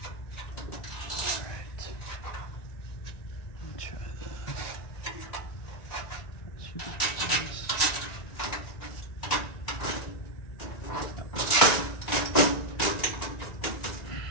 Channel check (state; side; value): late; right; 1.9 ms